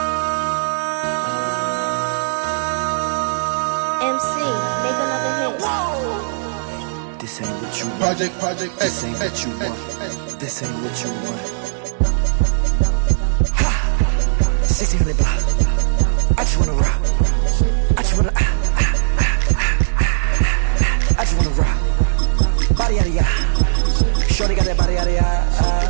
make another hit. This ain't what you want. Project, This ain't what you want. This ain't what you want. Ha! 1600 block. I just wanna rock. I just wanna I just wanna rock. Body out of ya. Shorty got that body out of ya.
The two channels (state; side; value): silent; left; digital silence